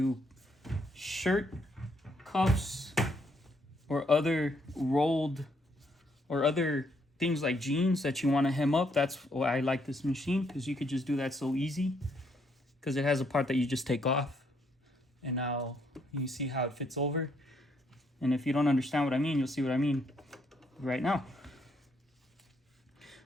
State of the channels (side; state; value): both; normal; correlation 0.72